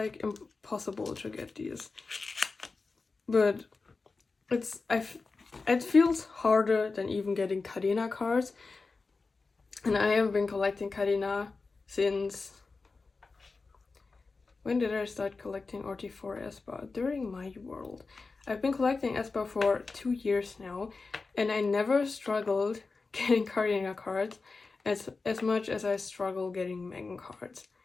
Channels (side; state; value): right; quieter; 4.1 dB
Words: impossible to get these. But it feels harder than even getting Kadena cards. And I have been collecting Kadena since... When did I start collecting RT4 Espa? During my world. I've been collecting Espa for 2 years now, and I never struggled getting Kadena cards as much as I struggle getting Megan cards,